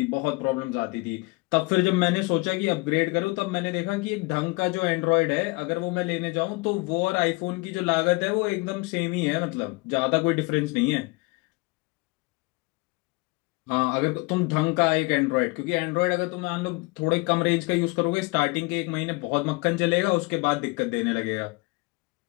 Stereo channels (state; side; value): quieter; right; 25.2 dB